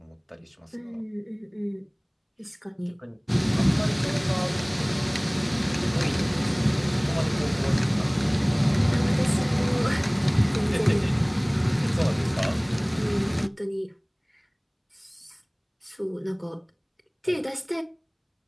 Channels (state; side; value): identical; both; correlation 1.00